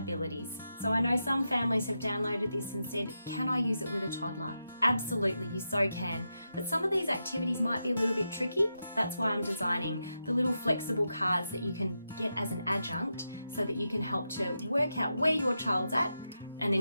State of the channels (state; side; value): inverted; both; correlation -0.87